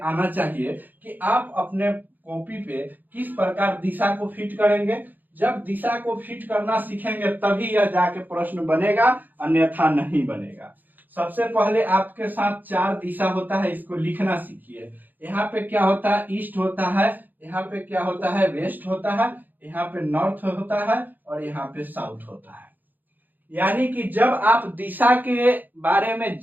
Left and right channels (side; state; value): left; late; 0.086 ms